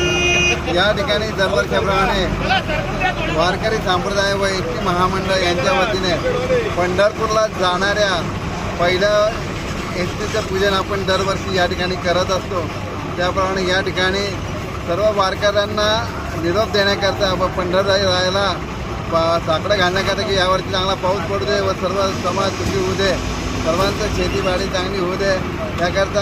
या ठिकाणी दरवर्षाप्रमाणे वारकरी संप्रदाय व एसटी महामंडळ यांच्या वतीने पंढरपूरला जाणाऱ्या पहिलं एसटीचं पूजन आपण दरवर्षी या ठिकाणी करत असतो. त्याप्रमाणे या ठिकाणी सर्व वारकऱ्यांना निरोप देण्याकरता व पंढररायाला साकडं घालण्याकरता की यावर्षी चांगला पाऊस पडू दे व सर्व समाज सुखी होऊ दे, सर्वांचं शेतीबाडी चांगली होऊ दे,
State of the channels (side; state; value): both; identical; correlation 1.00